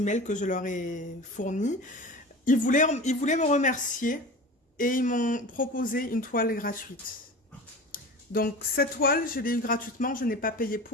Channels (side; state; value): both; normal; correlation 0.34